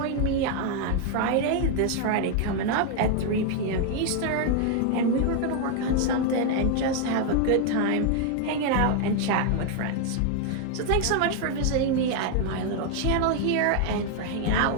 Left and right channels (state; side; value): different; both; correlation 0.00